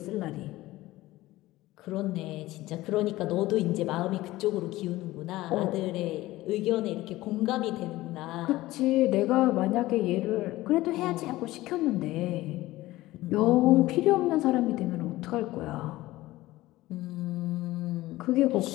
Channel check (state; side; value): quieter; right; 17.5 dB